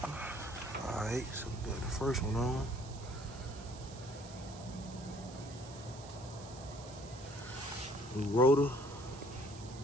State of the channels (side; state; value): right; noise; hiss, 17 dB below the sound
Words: Alright, so we got the first one on. New rotor,